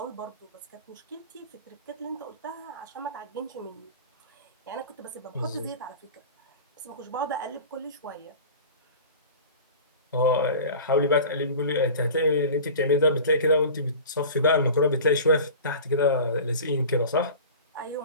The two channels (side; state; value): both; inverted; correlation -0.37